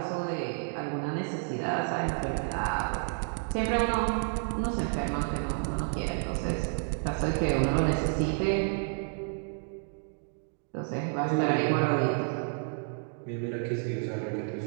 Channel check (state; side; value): silent; left; 58 dB below the other